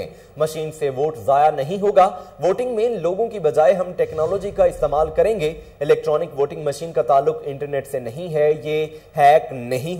मशीन से वोट जाया नहीं होगा। वोटिंग में लोगों की बजाय हम टेक्नोलॉजी का इस्तेमाल करेंगे। इलेक्ट्रॉनिक वोटिंग मशीन का ताल्लुक इंटरनेट से नहीं है, ये हैक नहीं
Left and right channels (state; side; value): identical; both; correlation 1.00